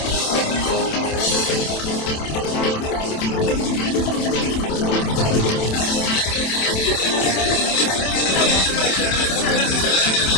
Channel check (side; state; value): right; late; 27 ms